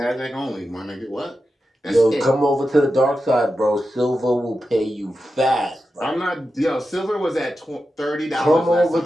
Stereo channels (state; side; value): normal; both; correlation 0.91